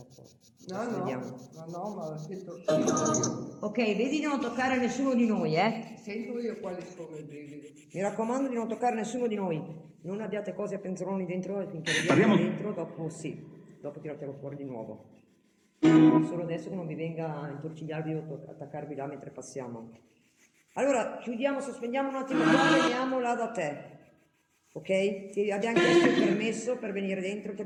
Vediamo. No, ma ho detto, Ok, vedi di non toccare nessuno di noi, sento io quali sono i brividi. Mi raccomando di non toccare nessuno di noi. Non abbiate cose a penzoloni dentro e finché vediamo dentro, dopo sì, dopo tiratelo fuori di nuovo. Solo adesso che non vi venga a intorcigliarvi o attaccarvi là mentre passiamo. Allora, chiudiamo, sospendiamo un attimo qua, veniamo là da te. Ok? Ti abbiamo chiesto il permesso per venire dentro, te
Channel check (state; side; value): identical; both; correlation 1.00